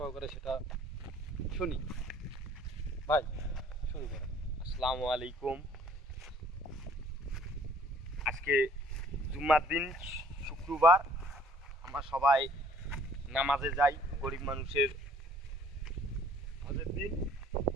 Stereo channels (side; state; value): both; normal; correlation 0.58